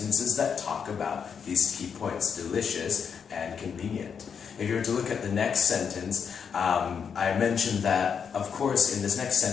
that talk about these key points, delicious and convenient. If you were to look at the next sentence, I mentioned that, of course, in this next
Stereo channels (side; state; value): right; quieter; 6.8 dB